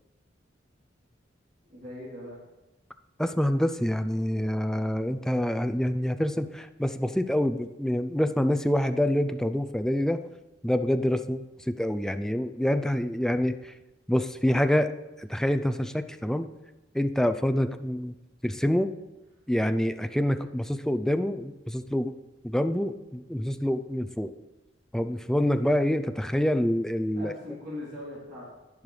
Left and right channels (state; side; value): normal; both; correlation 0.95